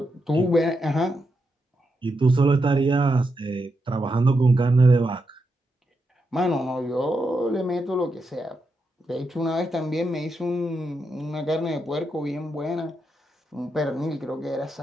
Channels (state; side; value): normal; both; correlation 0.84